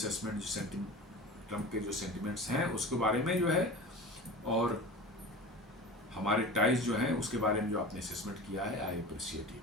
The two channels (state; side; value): normal; both; correlation 0.33